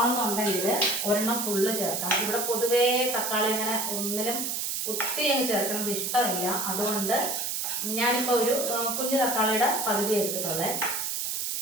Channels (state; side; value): noise; right; hiss, 1 dB below the sound